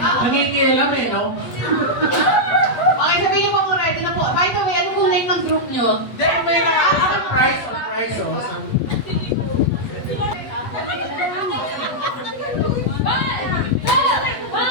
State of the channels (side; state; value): right; late; 8.3 ms